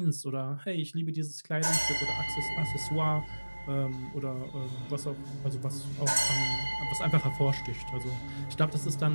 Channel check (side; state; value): both; inverted; correlation -1.00